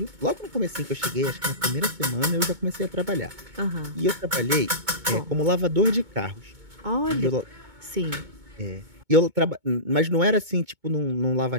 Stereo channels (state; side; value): late; left; 2.2 ms